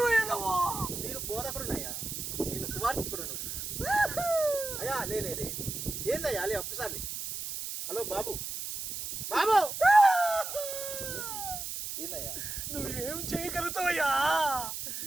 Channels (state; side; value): noise; right; hiss, 5 dB below the sound